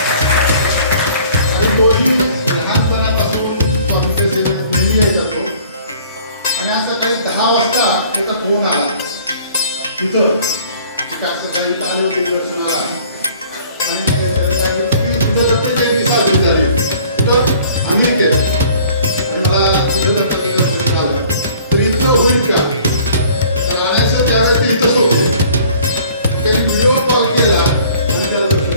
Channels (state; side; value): inverted; both; correlation -0.53